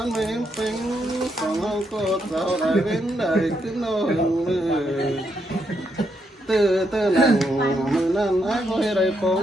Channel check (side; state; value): both; normal; correlation 0.78